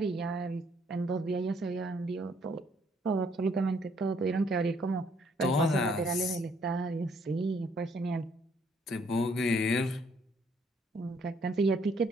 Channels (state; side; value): normal; both; correlation 0.67